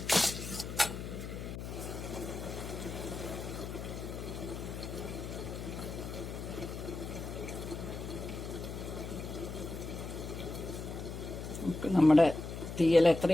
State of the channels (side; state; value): left; noise; hum, 7 dB below the sound